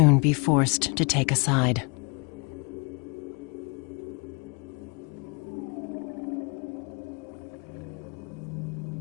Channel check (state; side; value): quieter; right; 32.4 dB